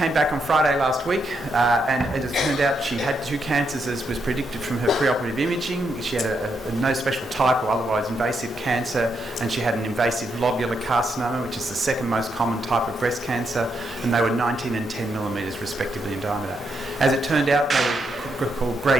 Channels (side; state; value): both; normal; correlation 0.80